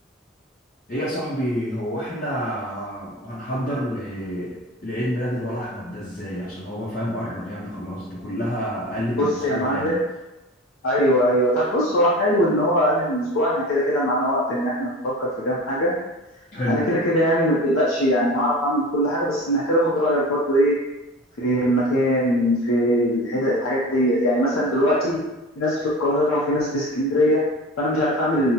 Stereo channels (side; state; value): both; normal; correlation 0.34